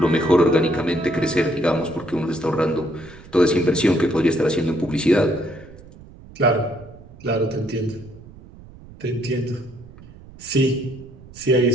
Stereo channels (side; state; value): right; noise; rumble, 20 dB below the sound